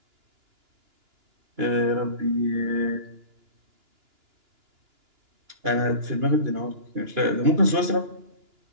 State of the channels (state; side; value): late; left; 2.9 ms